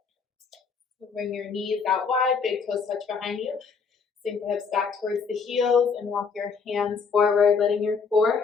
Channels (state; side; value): quieter; right; 5.5 dB